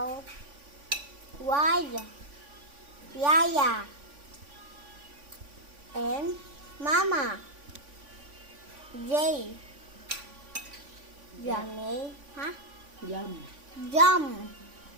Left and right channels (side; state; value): left; late; 3.5 ms